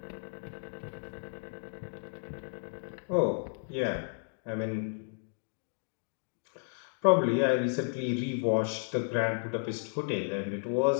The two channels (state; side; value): silent; right; 56 dB below the other